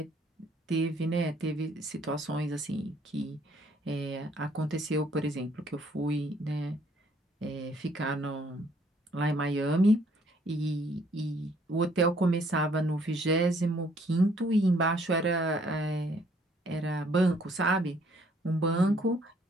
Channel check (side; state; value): both; normal; correlation 0.64